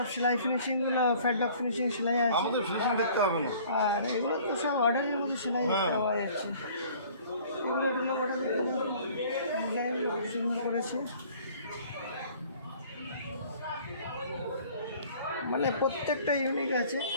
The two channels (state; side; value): inverted; both; correlation -0.52